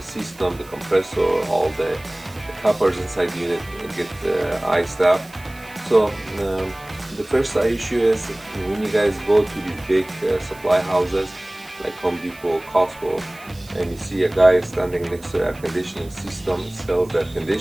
system, the compressor, all the coppers inside the unit get iced up. So the first issue is, when you guys go to these big supply houses like Home Depot, Costco, and you see a guy standing next to air conditioning system, sells air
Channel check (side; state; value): right; noise; hiss, 23 dB below the sound